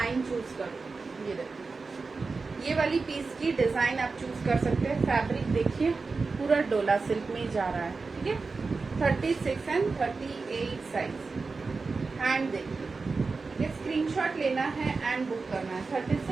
चूज करो। ये देखो ये वाली पीस की डिजाइन आप चूज कर सकते हैं। फैब्रिक देखिए पूरा डोला सिल्क में जा रहा है। ठीक है 36 एंड 38 साइज। हैंड देखिए, ये स्क्रीनशॉट लेना है एंड बुक करना है।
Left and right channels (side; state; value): left; quieter; 4.2 dB